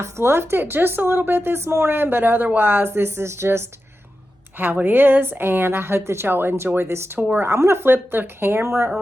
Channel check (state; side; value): normal; both; correlation 0.91